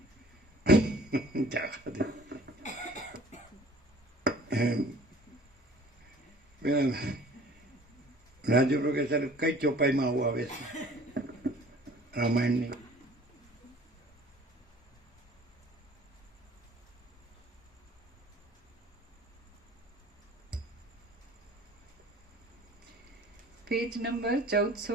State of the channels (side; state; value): both; normal; correlation 0.50